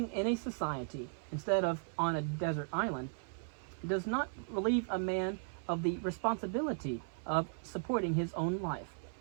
in a society instead of on a desert island does not relieve a man of the responsibility of supporting his own life.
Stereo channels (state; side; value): silent; left; 53 dB below the other